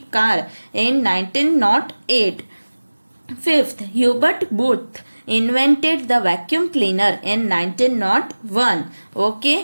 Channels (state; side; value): inverted; both; correlation -1.00